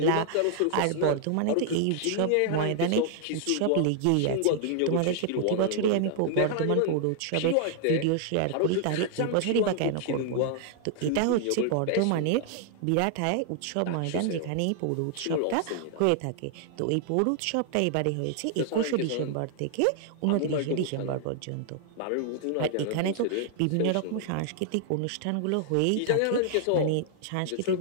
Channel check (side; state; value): both; different; correlation -0.01